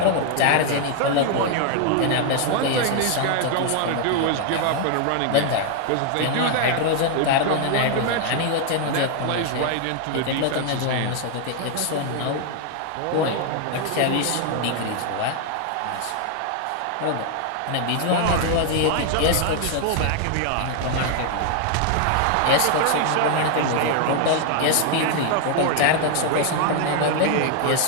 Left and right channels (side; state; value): both; different; correlation 0.00